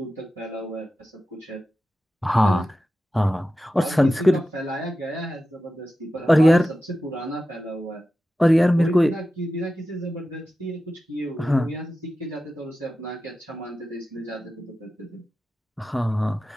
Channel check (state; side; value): normal; both; correlation 0.93